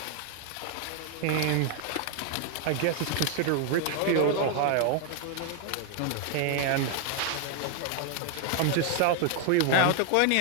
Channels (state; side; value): different; both; correlation 0.00